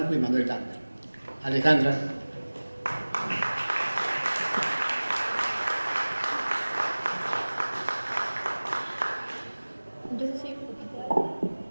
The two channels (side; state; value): both; inverted; correlation -1.00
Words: y Manuel Campos. Alejandra.